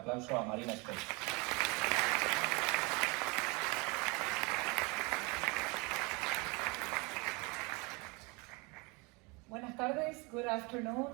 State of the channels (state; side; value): quieter; left; 28.3 dB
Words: a Marina Vortrag. Buenas tardes, good afternoon.